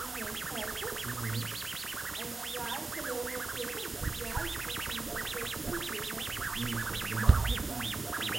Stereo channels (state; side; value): quieter; left; 3.6 dB